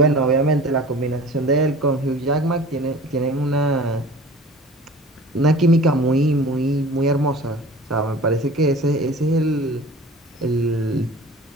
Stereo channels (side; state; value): both; normal; correlation 0.42